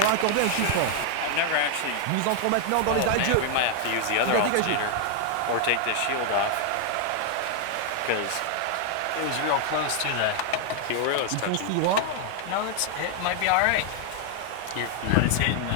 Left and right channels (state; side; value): different; both; correlation 0.00